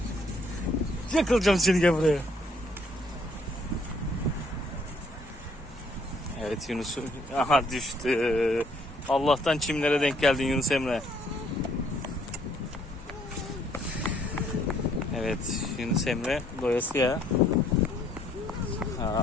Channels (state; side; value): normal; both; correlation 0.65